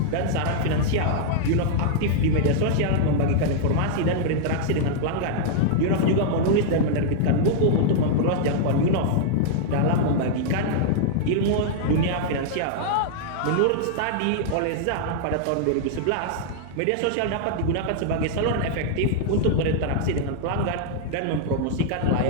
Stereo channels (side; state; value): both; different; correlation -0.01